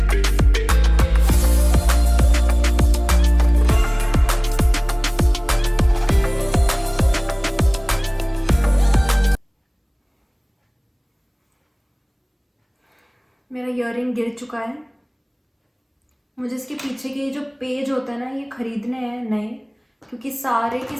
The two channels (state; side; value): identical; both; correlation 1.00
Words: मेरा ईयरिंग गिर चुका है। मुझे इसके पीछे के जो पेज होता है ना, ये खरीदने हैं नए, क्योंकि सारे के